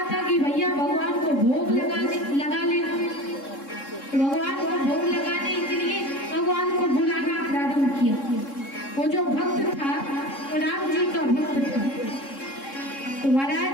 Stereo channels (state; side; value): late; right; 3.7 ms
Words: था कि भैया भगवान को भोग लगा लेना। भगवान को भोग लगाने के लिए भगवान को बुलाना प्रारंभ किया। वो जो भक्त था वो राम जी का भक्त था, तो महाराज